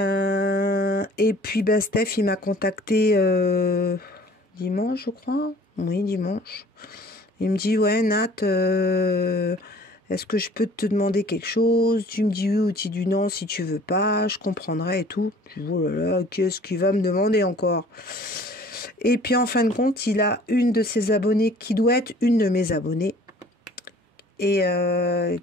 puis, bah, Steph, il m'a contacté... dimanche, je crois. Oui, dimanche. Il me dit, ouais, Nat, est-ce que je peux te demander quelque chose? Tu me dis oui ou tu dis non si tu veux pas, je comprendrai et tout. Je dis, oh là là, qu'est-ce qu'il va me demander encore? Et puis en fin de compte, il a une de ses abonnées qui doit être une de mes abonnées et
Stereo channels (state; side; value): normal; both; correlation 0.51